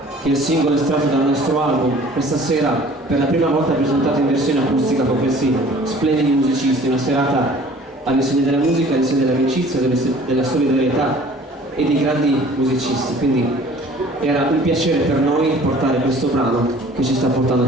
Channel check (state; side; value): normal; both; correlation 0.50